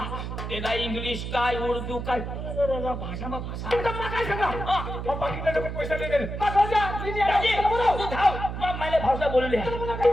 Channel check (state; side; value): noise; right; hum, 6 dB below the sound